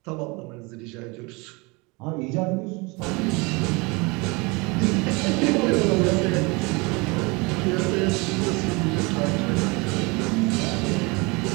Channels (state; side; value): quieter; left; 27.1 dB